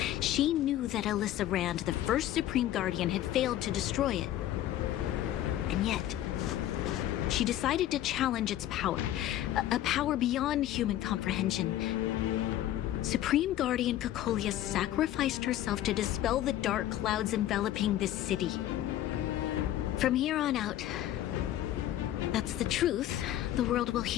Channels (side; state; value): right; quieter; 12.9 dB